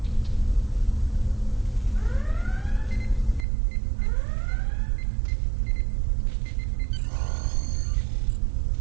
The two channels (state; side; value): drops out; left; at 3.5 s